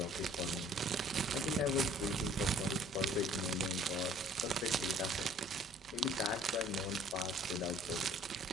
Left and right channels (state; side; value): normal; both; correlation 0.55